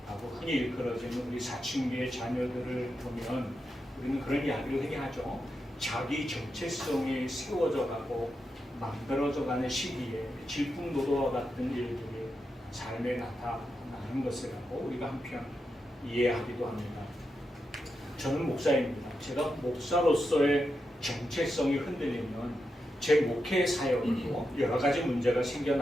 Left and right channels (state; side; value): normal; both; correlation 0.87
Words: 흔히 일컬어지는 우리 사춘기의 자녀들을 보면 우리는 그런 이야기를 흔히 하죠. 자기 정체성이 세워져 가고 만들어져 가는 시기에 질풍노도와 같은 일들이 삶에 나타나는 것이라고 우리가 한편 이해하기도 합니다. 저는 목사입니다. 제가 목사로서의 정체성이 흔들리면 제 목회 사역도 여러 가지 문제가